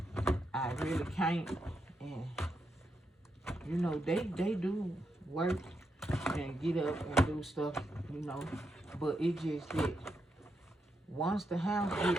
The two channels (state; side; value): normal; both; correlation 0.83